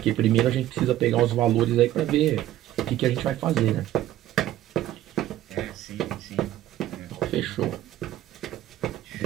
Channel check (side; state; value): left; quieter; 13.6 dB